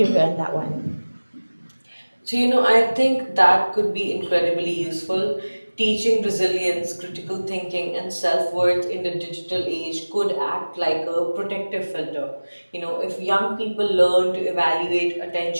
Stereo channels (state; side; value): inverted; both; correlation -1.00